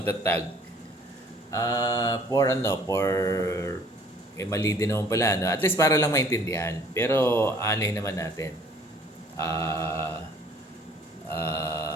Mali din naman pala, no? At least para lang maintindihan. Pero, naman natin.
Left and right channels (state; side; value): normal; both; correlation 0.55